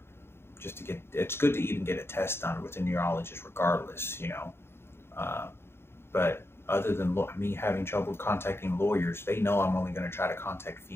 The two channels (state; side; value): late; right; 0.12 ms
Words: Just to get, it's good to even get a test done with a neurologist regardless, you know. But other than me having trouble contacting lawyers, they know I'm only going to try to contact